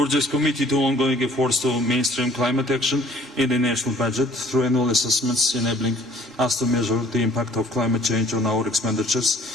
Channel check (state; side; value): normal; both; correlation 0.55